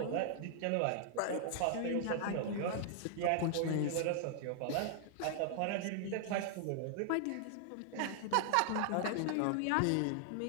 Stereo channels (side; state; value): both; different; correlation 0.00